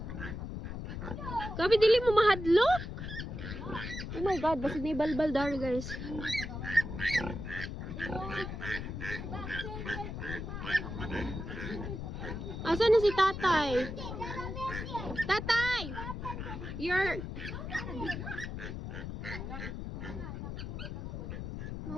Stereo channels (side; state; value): left; noise; rumble, 6 dB below the sound